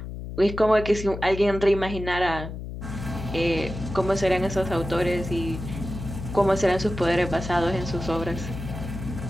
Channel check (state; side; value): noise; left; hum, 8 dB below the sound